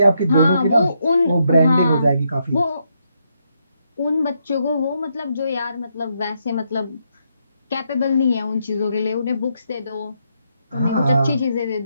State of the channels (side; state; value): both; inverted; correlation -0.78